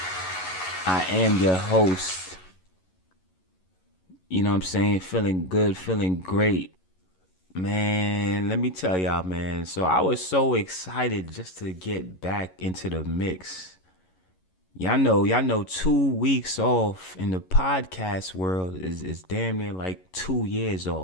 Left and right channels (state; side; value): late; right; 11 ms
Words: I am your host. You know what I'm saying? Feeling good, feeling great. Man, let me tell y'all, man. So I was so excited just to get back into the mix. Y'all know 2 weeks off in the podcast world is damn near like 2 years